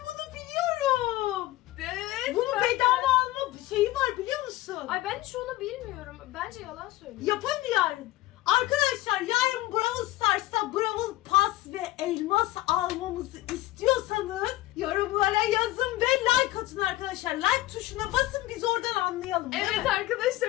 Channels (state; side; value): quieter; right; 17.0 dB